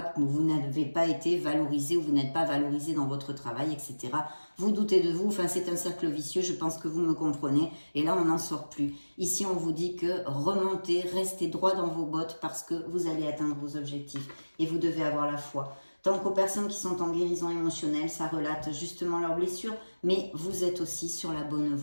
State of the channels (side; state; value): both; inverted; correlation -1.00